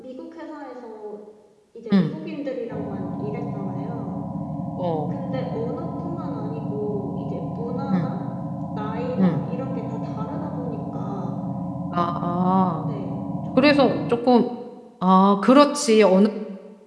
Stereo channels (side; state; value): both; identical; correlation 1.00